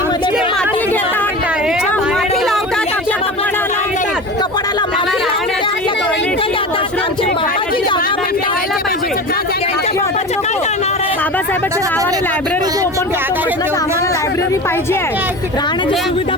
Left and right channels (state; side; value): normal; both; correlation 0.31